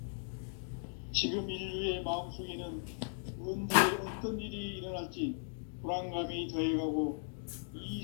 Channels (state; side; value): silent; right; digital silence